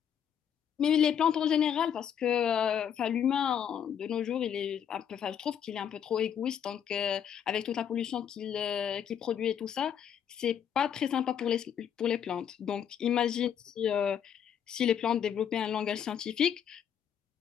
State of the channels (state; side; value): quieter; right; 8.7 dB